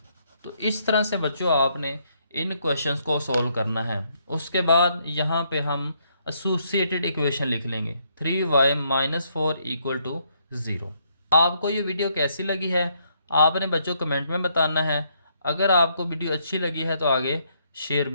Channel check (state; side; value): inverted; both; correlation -0.72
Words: तो इस तरह से बच्चों आपने इन क्वेश्चंस को सॉल्व करना है। उसके बाद यहाँ पे हम एसोसिएटेड इक्वेशन लिख लेंगे 3y - 4 = 0। आपको ये वीडियो कैसी लगी है आपने बच्चों कमेंट में बताना है। अगर आपको वीडियो अच्छी लगी है तो आगे शेयर